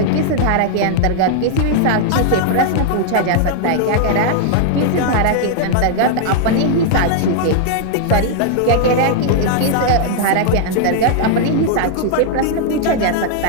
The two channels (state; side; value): different; both; correlation -0.01